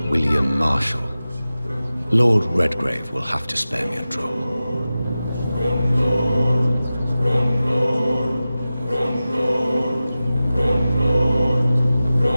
William Marshall? Lord Redgrave will have to spare me a drop.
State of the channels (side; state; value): both; inverted; correlation -0.95